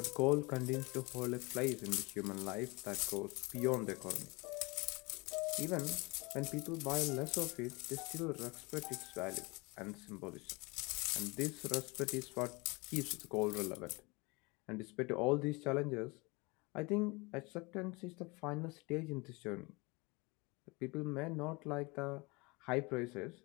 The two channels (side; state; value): right; quieter; 26.3 dB